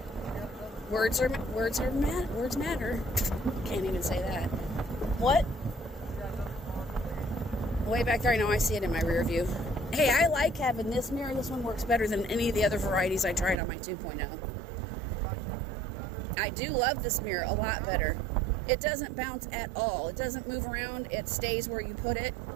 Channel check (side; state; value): left; drops out; at 13.6 s